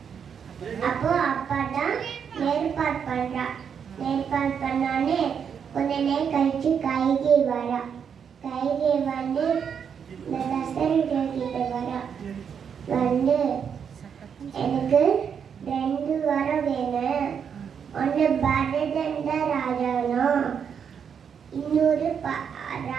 அப்போ அப்பாதான் ஏற்பாடு பண்றா. ஏற்பாடு பண்ணானே கொஞ்ச நேரம் கழிச்சு கைகை வரா. கைகை வந்து இந்த தசரதர் கிட்ட வரா. வந்து எனக்கு 2 வரம் வேணும், பரதன் தான் ராஜானோ. இன்னொரு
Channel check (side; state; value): left; quieter; 7.3 dB